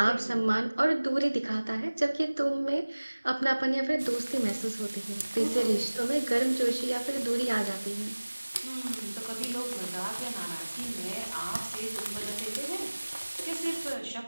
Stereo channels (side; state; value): both; inverted; correlation -1.00